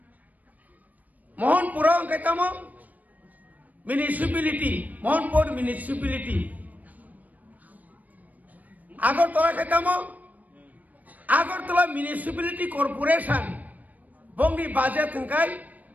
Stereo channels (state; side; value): late; left; 0.077 ms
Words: Mohanpur অঙ্কাইতাম municipality Mohanpur municipality Agartala খাইতাম Agartala municipality corporation বঙ্গি budget থংকাই